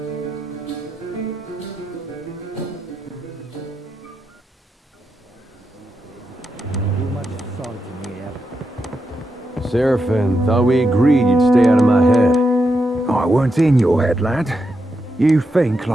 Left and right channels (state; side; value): normal; both; correlation 0.85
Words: much salt in here. Seraphin, thought we agreed you'd stay out of my head. I weren't in your head, lad. You think